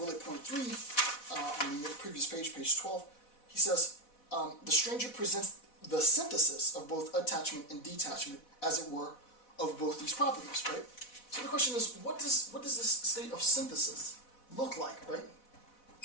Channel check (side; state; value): right; late; 4.1 ms